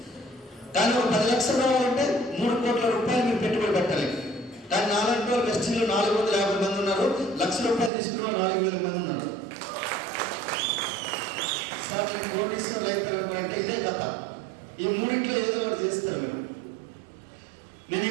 కానీ ఒక 10 లక్షలు రావాలంటే 3 కోట్ల రూపాయలు మీరు పెట్టుబడి పెట్టాలి. కానీ నాలాంటి వాళ్ళు వెస్టీజ్లో 450 మంది ఉన్నారు. ₹1,00,000 తీసుకున్న 4,000 మంది ఉన్నారు. సార్ మీరు కోటీశ్వరులు అవుతారనుకుంటే ఇదే కథ. ఈ మూడింట్లో ఏదో ఒకటి చేస్తారు మీరు. నేను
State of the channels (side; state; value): left; drops out; at 7.9 s